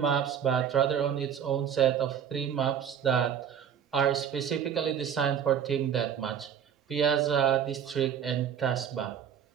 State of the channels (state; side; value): quieter; left; 8.5 dB